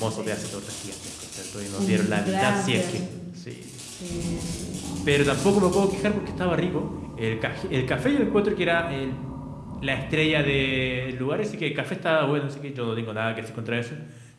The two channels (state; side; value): identical; both; correlation 1.00